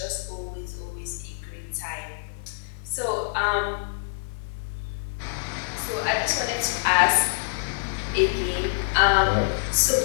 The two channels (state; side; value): silent; right; digital silence